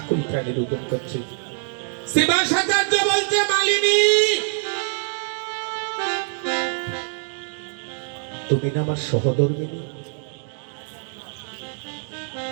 প্রাণে রোদন করছে। শিবাসাচার্য বলছে, মালিনী, তুমি না আমার সহধর্মিনী।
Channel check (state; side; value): silent; left; digital silence